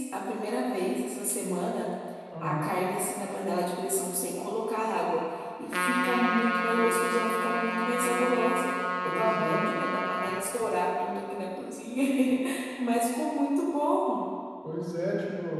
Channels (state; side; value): identical; both; correlation 1.00